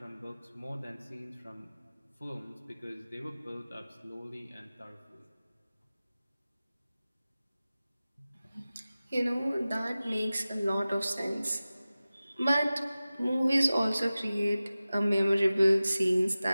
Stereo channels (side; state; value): both; inverted; correlation -0.96